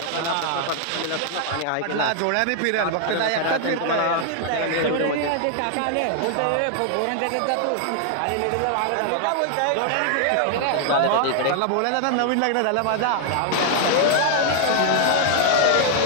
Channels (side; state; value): both; different; correlation 0.00